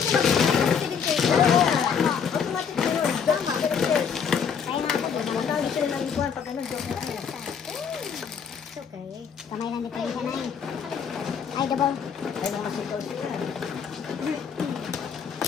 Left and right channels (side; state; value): right; quieter; 6.8 dB